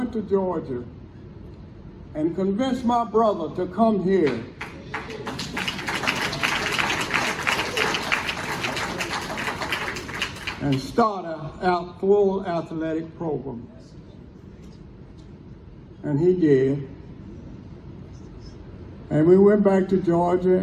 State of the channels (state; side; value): identical; both; correlation 1.00